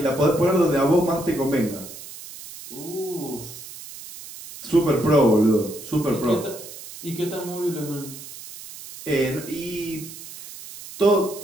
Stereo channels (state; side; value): noise; right; hiss, 14 dB below the sound